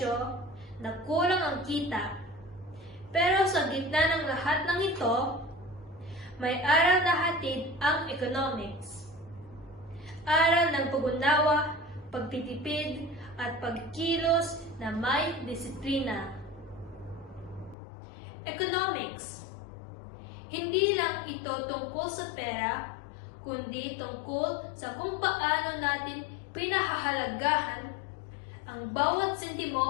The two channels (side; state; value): right; drops out; at 17.8 s